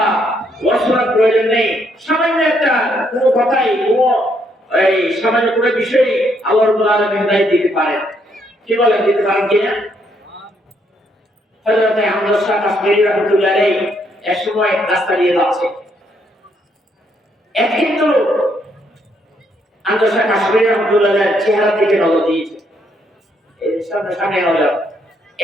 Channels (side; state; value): both; normal; correlation 0.73